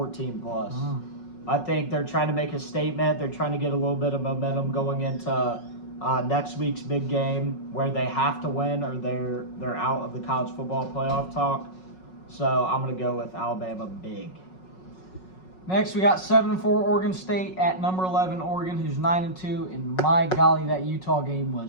plus. I think they're trying to make a statement. They're trying to get a little bit of momentum going into next week's big game where they have to win or they're out of the college football playoff talk. So I'm going to go with Alabama big. Next, we got 7-4 Oregon State at number 11 Oregon, who's 9-2. And my golly, that Utah game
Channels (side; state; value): right; late; 5.4 ms